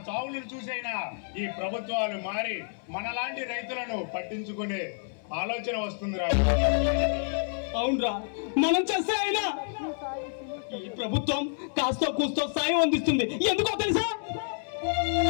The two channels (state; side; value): silent; right; digital silence